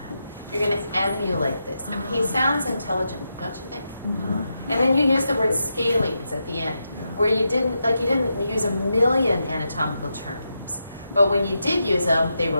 You're going to emulate this. And he sounds intelligent, don't you think? Mm-hmm. And then you use the word scalings at the end, where you didn't use a million anatomical terms, but when you did use them, they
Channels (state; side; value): inverted; both; correlation -0.86